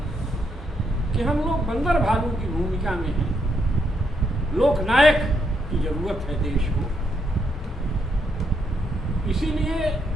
कि हम लोग बंदर भालू की भूमिका में हैं, लोकनायक की जरूरत है देश को। इसीलिए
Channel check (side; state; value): both; normal; correlation 0.78